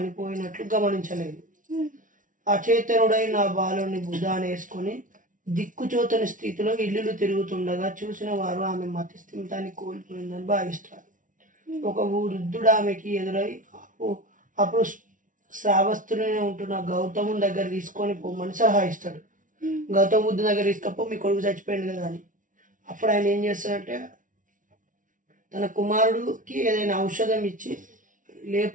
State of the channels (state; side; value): late; left; 0.38 ms